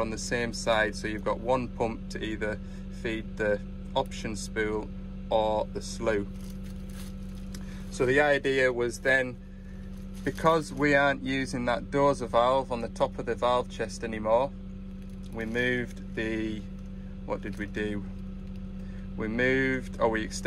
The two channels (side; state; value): both; identical; correlation 1.00